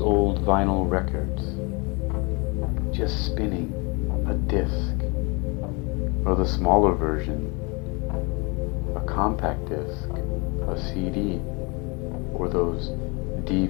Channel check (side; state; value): right; quieter; 29.4 dB